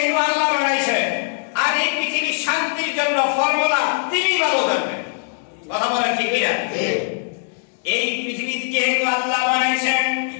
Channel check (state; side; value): silent; right; 65 dB below the other